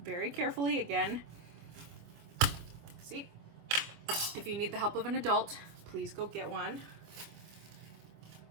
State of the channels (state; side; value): late; left; 25 ms